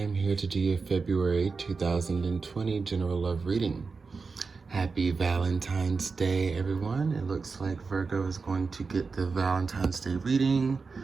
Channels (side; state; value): left; quieter; 4.6 dB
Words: here to do your February 2020 General Love Reading. Happy Valentine's Day, everyone. It looks like Virgo is going to get the Valentine's Day reading.